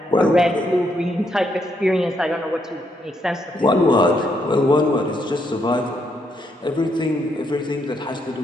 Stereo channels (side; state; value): both; normal; correlation 0.76